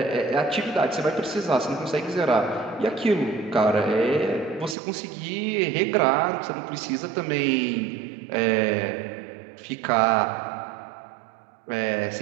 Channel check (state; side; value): drops out; left; at 4.8 s